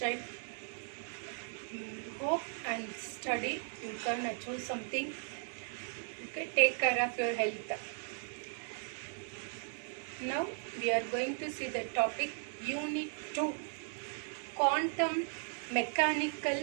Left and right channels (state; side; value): silent; left; 53 dB below the other